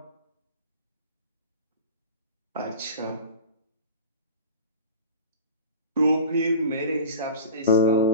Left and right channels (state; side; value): inverted; both; correlation -0.37